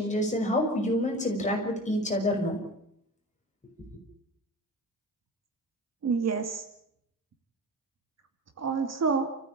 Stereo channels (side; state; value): both; normal; correlation 0.33